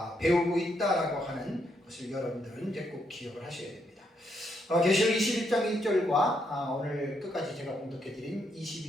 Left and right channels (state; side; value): normal; both; correlation 0.77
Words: 배우고 있다라고 하는 것을 여러분들은 이제 꼭 기억을 하셔야 됩니다. 계시록 21장 1절과 오늘 끝까지 제가 봉독해드린